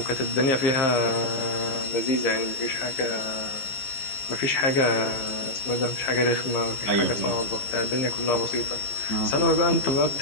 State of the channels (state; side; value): late; right; 15 ms